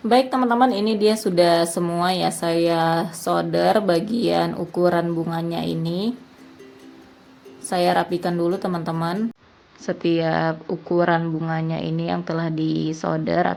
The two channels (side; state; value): both; identical; correlation 1.00